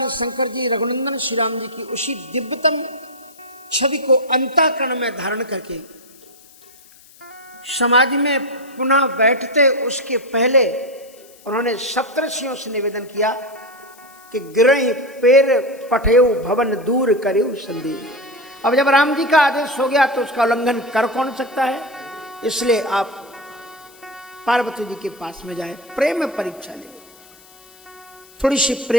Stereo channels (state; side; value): noise; left; hiss, 25 dB below the sound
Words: शंकर जी रघुनंदन श्री राम जी की उसी दिव्यतम छवि को अंतःकरण में धारण करके समाज में पुनः बैठते उसके पहले उन्होंने सप्तर्षियों से निवेदन किया कि गिरहि पेर पठेउ भवन दूर करेउ संदेह। अब जब राम जी का आदेश हो गया तो उसका उल्लंघन कर कौन सकता है, इसलिए आप पार्वती जी के पास में जाए, प्रेम में परीक्षा ले, थोड़ी सी